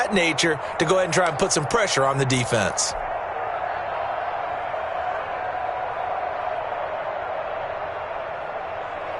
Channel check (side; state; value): both; identical; correlation 1.00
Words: nature, to go ahead and try and put some pressure on the defense.